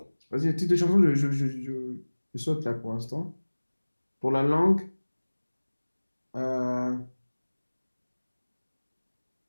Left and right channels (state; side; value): inverted; both; correlation -1.00